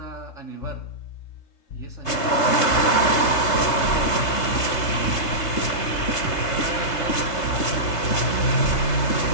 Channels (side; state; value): right; late; 3.3 ms